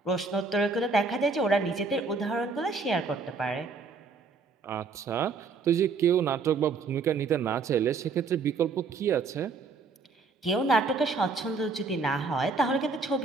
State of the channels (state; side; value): quieter; left; 4.4 dB